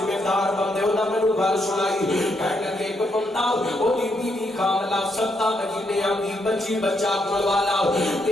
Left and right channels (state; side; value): normal; both; correlation 0.77